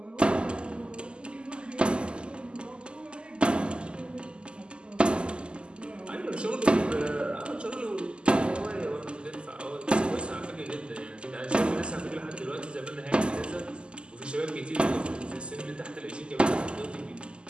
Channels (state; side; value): late; left; 0.050 ms